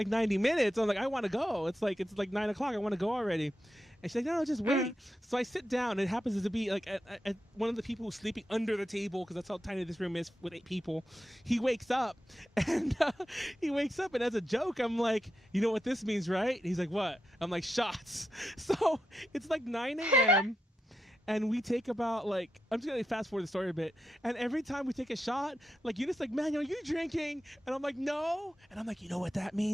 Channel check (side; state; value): both; normal; correlation 0.87